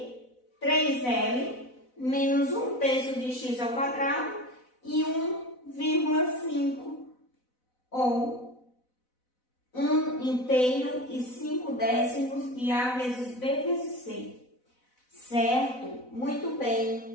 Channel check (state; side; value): late; right; 4.0 ms